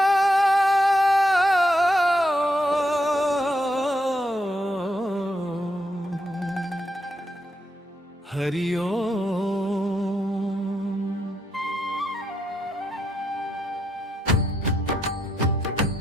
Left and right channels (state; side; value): normal; both; correlation 0.80